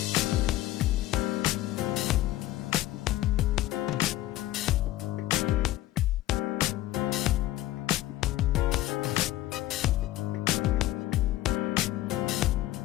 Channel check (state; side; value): quieter; right; 15.2 dB